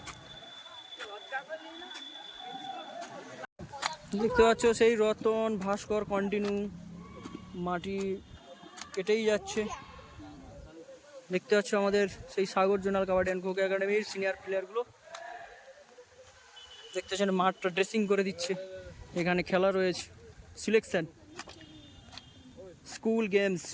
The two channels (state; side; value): identical; both; correlation 1.00